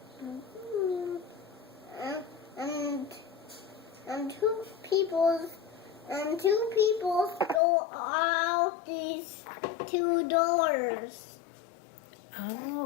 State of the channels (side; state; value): right; drops out; at 7.6 s